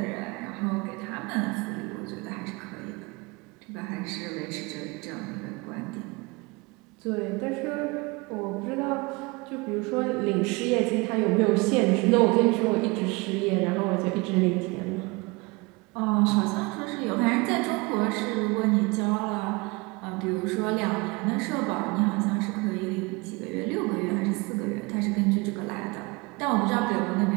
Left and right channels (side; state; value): left; quieter; 26.3 dB